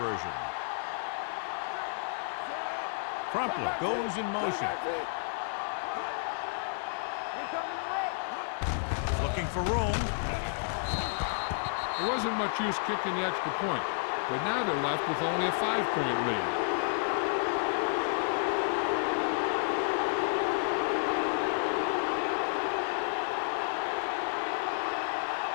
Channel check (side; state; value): right; silent; digital silence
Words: Crumpler goes in motion. Looking for room. There wasn't much use kicking the extra point, but now they're left with only a 5-point lead.